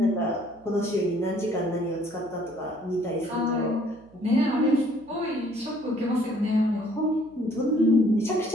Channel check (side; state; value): right; noise; hum, 28 dB below the sound